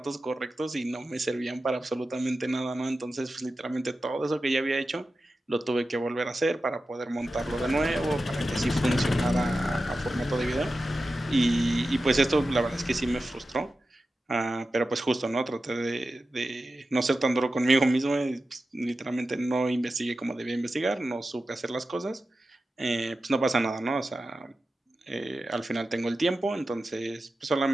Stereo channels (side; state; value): both; normal; correlation 0.93